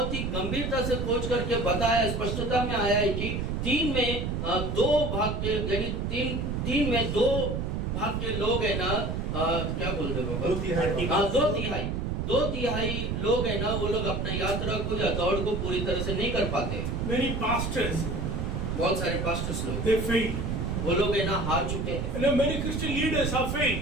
ही गंभीरता से खोज करके बताया, स्पष्टता में आया है कि 3 में 2 भाग के यानी 3 में 2 भाग के लोग है ना क्या बोलते हो? 2/3। हाँ 2/3 लोग है ना वो लोग अपना यात्रा को या दौड़ को पूरी तरह से नहीं कर पाते। Many pastors, बहुत सारे पास्टर्स लोग they fail. वो लोग है ना हार चुके हैं। Many Christian leaders have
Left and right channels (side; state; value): right; noise; rumble, 1 dB below the sound